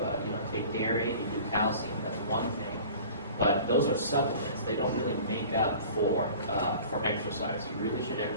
you take dairy and you do calcium, that's one thing. But those are supplements. They don't really make up for exercise. You really should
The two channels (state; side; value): inverted; both; correlation -0.44